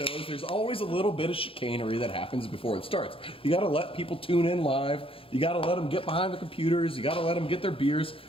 there's always a little bit of chicanery that happens before it starts. You got to let people tune in live. You got to let them get behind the computers. You got to let them get their beers.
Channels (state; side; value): late; right; 0.27 ms